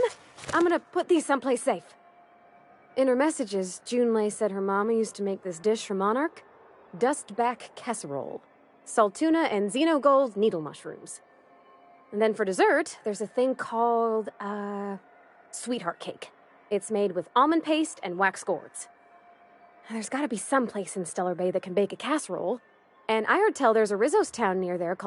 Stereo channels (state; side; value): identical; both; correlation 1.00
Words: I'm gonna put these someplace safe. In her messages, Junlei said her mama used to make this dish for Monarch. Dustback casserole. Saltuna and xenogold needle mushrooms. And then for dessert, there's a thing called, sweetheart cake. It's made with almond paste and wax gourds. There's gotta be some place in Stellar Bay that can bake a casserole. And I heard tell there's a Rizzo's town near there